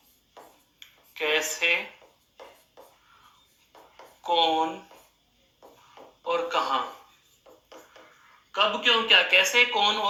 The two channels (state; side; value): identical; both; correlation 1.00